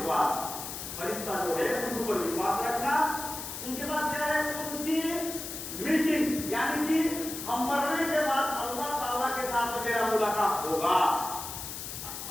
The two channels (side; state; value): left; noise; hiss, 8 dB below the sound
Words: فرشتہ جو ہے ان کے اوپر وشواس رکھنا. ان کے بعد کیا ہے؟ ان کی میٹنگز یعنی کہ ہم مرنے کے بعد اللہ تعالیٰ کے ساتھ میرا ملاقات ہوگا.